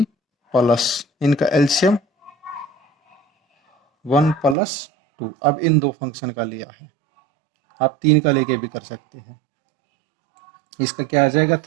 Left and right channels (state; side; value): drops out; left; at 4.5 s